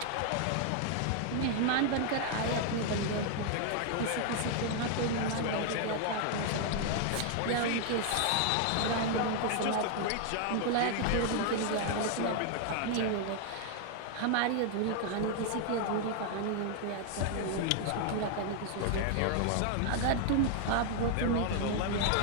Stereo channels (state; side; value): different; both; correlation 0.00